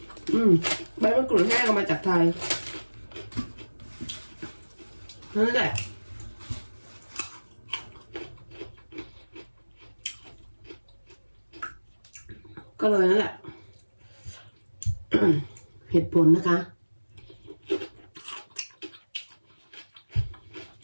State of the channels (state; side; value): inverted; both; correlation -1.00